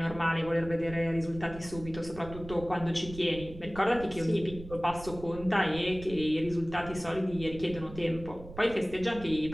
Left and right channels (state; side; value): noise; right; rumble, 14 dB below the sound